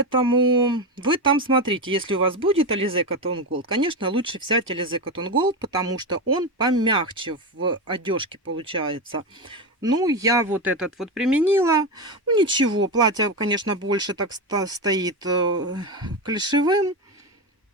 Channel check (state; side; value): normal; both; correlation 0.15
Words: вы там смотрите, если у вас будет Alize Cotton Gold, конечно, лучше взять Alize Cotton Gold, потому что он помягче в одежке получается. Ну, я вот этот вот применила. Ну, ничего, платье, конечно, больше так стоит клишевым.